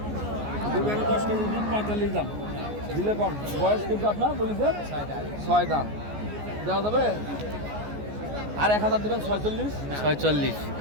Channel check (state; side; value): late; left; 14 ms